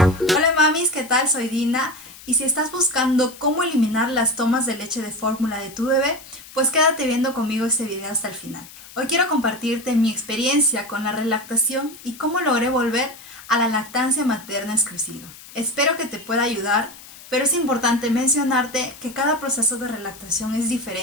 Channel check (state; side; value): noise; left; hiss, 18 dB below the sound